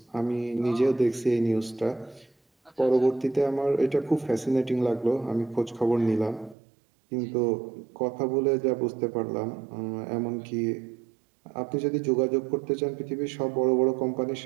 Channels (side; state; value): left; drops out; at 6.6 s